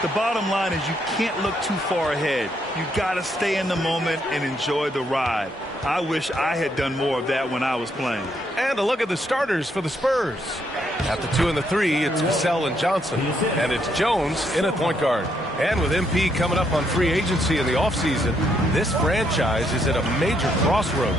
bottom line is you can't look too far ahead. You got to stay in the moment and enjoy the ride. I wish I had done more of that when I was playing. And a look at the starters for the Spurs. At the 2 and the 3, it's Vassell and Johnson. And it's Jones in at point guard. And with MP coming up on free agency in the offseason, this franchise is at a major crossroads.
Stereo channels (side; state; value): both; normal; correlation 0.75